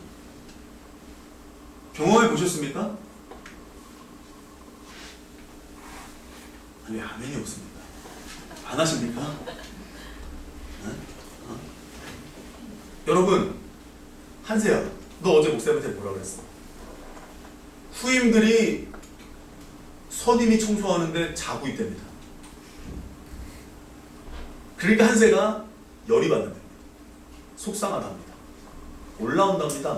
경험해 보셨습니까? 아니, 아멘이 없습니다. 안 하십니까? 여러분, 한세야, 너 어제 목사님한테 뭐라 그랬어? 후임들이 선임이 청소하는데 자고 있답니다. 그러니까 한세가 열이 받는답니다. 속상하답니다.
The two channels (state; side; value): identical; both; correlation 1.00